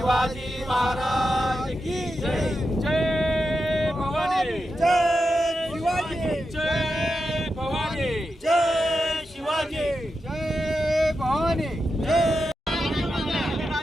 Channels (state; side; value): normal; both; correlation 0.88